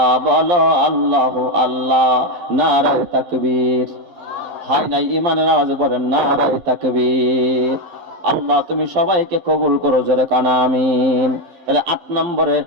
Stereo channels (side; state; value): left; late; 12 ms